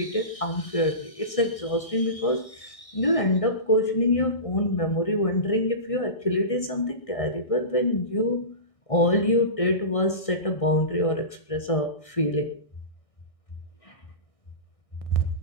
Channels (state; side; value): late; right; 1.6 ms